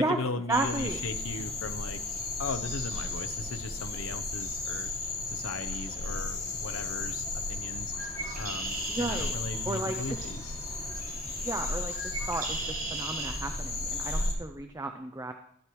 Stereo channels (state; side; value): normal; both; correlation 0.44